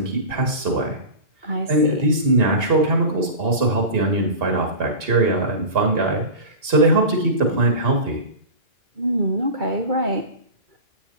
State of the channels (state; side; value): late; left; 2.8 ms